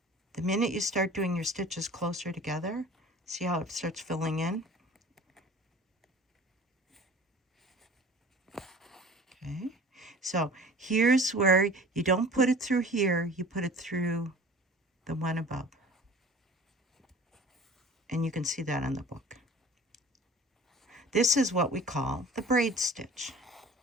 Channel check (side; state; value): both; normal; correlation 0.43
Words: The minute you start doing your stitches closer together, see how it starts filling in? Okay, so here's where you don't put it through here, you put it through the one above. And you can see that on the book. This is what we call the braid stitch.